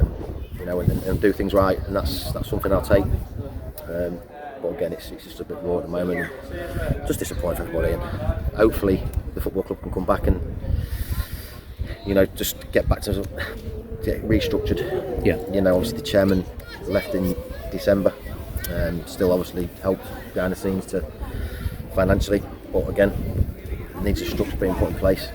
you know, and do things right, and that's something I'll take. But again, it's just a bit raw at the moment, and just disappointing for everybody, and hopefully the football club can come back and, you know, just get back to get restructured. Yeah. You know, obviously the chairman left in December, still obviously helped behind the scenes to financially, but again, it needs a structure being put in place.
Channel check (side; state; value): both; identical; correlation 1.00